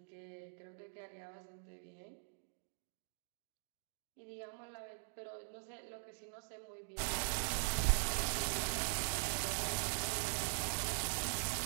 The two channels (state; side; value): silent; left; digital silence